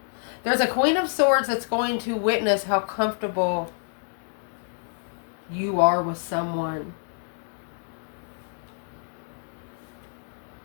There's a Queen of Swords that's going to witness how comfortable you are with someone.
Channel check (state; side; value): silent; right; 60 dB below the other